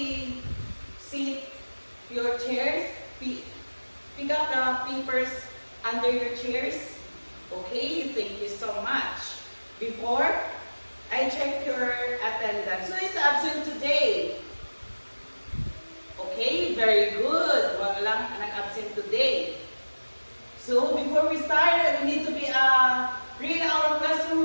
sit your chairs, pick up the papers under your chairs. Okay, thank you so much. Before I check your attendance. Who is absent today? Okay, very good. Wala lang nag-absent today. So before we start, we need to read our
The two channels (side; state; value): both; inverted; correlation -1.00